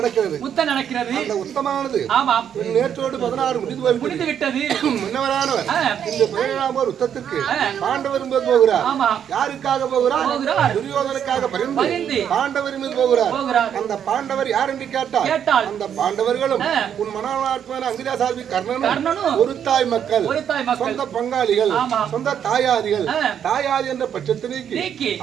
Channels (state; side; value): quieter; left; 8.8 dB